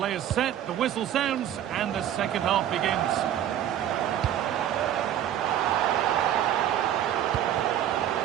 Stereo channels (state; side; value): quieter; left; 11.0 dB